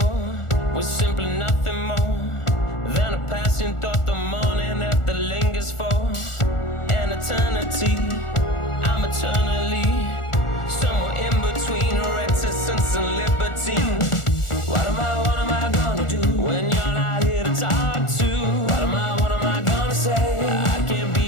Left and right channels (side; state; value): right; late; 1.4 ms